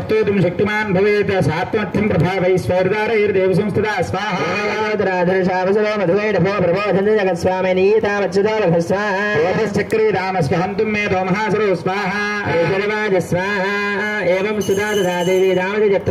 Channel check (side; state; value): both; identical; correlation 1.00